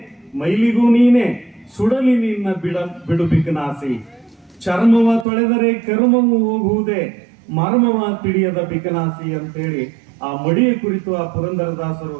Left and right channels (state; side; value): drops out; left; at 5.2 s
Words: ಮೈಲಿಗೂ ನೀನೆ, ಸುಡಲಿ ನಿನ್ನ ಬಿಡು ಬಿಕನಾಸಿ, ಚರ್ಮವ ತೊಳೆದರೆ ಕರ್ಮವು ಹೋಗುವುದೇ, ಮರ್ಮವ ತಿಳಿಯದ ಬಿಕನಾಸಿ ಅಂತೇಳಿ ಆ ಮಡಿಯ ಕುರಿತು ಆ ಪುರಂದರದಾಸರು